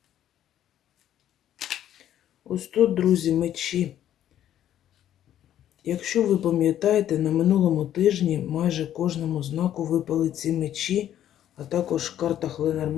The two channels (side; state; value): right; quieter; 11.2 dB